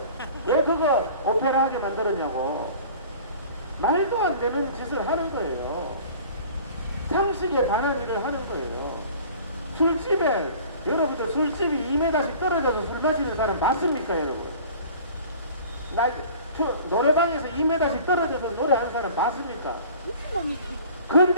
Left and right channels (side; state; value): both; inverted; correlation -0.45